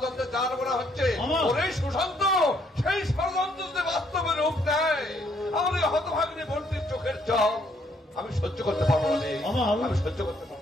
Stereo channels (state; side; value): normal; both; correlation 0.69